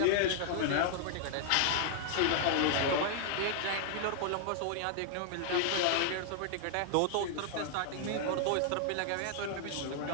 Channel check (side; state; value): both; different; correlation -0.01